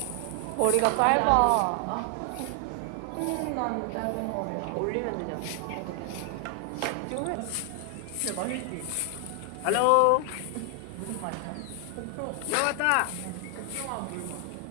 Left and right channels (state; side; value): different; both; correlation 0.00